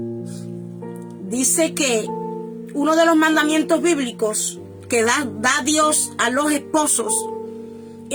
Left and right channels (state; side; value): identical; both; correlation 1.00